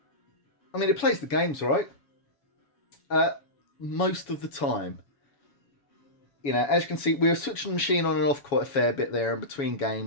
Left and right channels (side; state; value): right; late; 7.1 ms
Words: I mean, it plays the games, right? Most of the time. You know, as you can see, we were switching the machine on and off quite a fair bit there in between